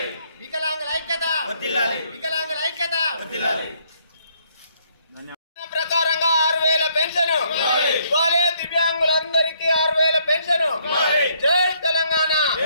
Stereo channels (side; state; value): both; inverted; correlation -0.69